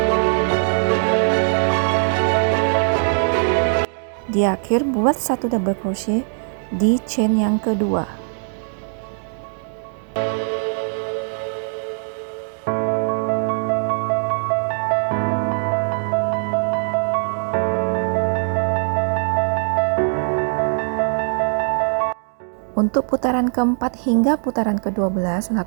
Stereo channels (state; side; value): silent; left; 65 dB below the other